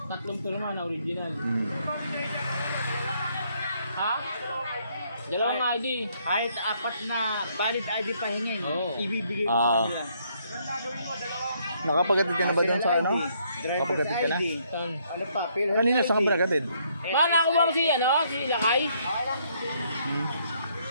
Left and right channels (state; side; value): inverted; both; correlation -0.69